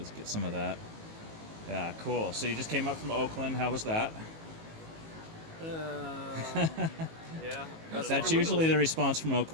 get some of that. Yeah, cool. So you just came up from Oakland. How was that? Yeah. That's usually the response from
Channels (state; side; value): late; left; 19 ms